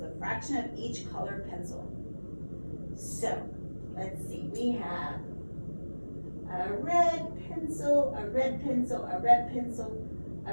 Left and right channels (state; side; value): inverted; both; correlation -1.00